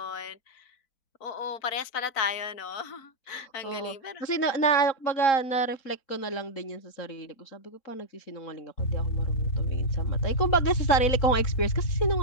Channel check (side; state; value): right; late; 4.0 ms